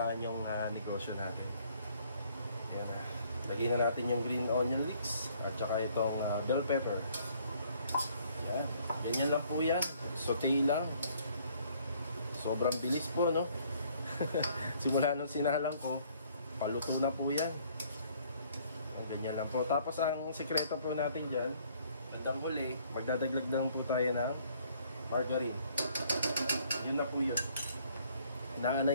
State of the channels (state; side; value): inverted; both; correlation -0.62